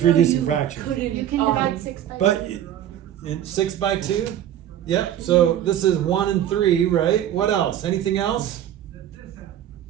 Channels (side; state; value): left; quieter; 11.1 dB